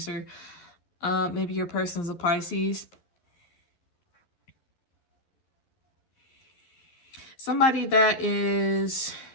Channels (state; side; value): late; right; 11 ms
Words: Maybe your person's a Pisces. Somebody that is